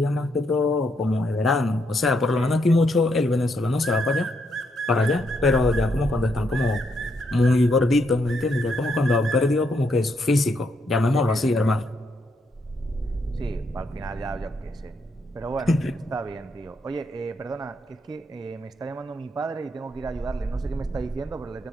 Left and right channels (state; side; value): normal; both; correlation 0.77